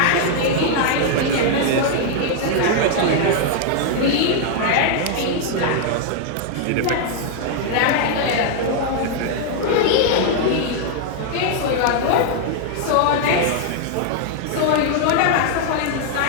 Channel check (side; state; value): both; different; correlation 0.00